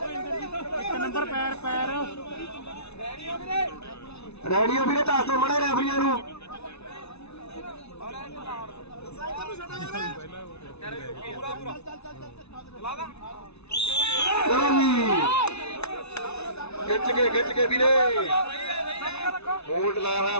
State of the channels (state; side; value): late; right; 0.80 ms